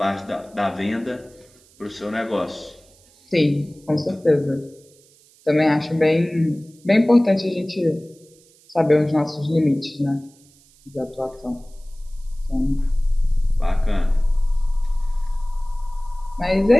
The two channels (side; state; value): right; noise; hiss, 29 dB below the sound